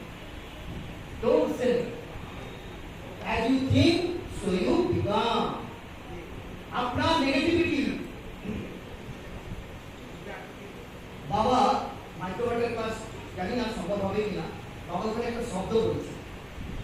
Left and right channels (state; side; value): identical; both; correlation 1.00